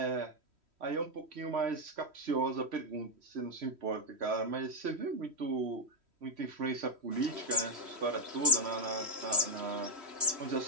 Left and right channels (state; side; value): late; left; 3.1 ms